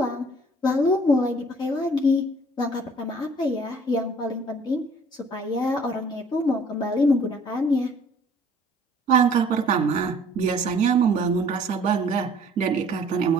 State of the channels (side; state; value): both; normal; correlation 0.55